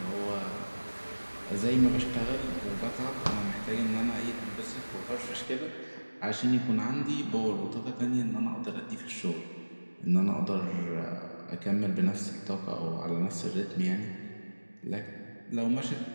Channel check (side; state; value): both; inverted; correlation -1.00